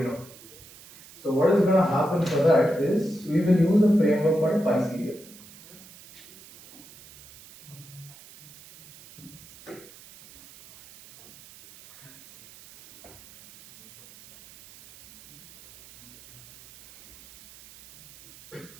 So what is going to happen for that is, we will use a framework called PySerial.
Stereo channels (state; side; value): noise; right; hiss, 21 dB below the sound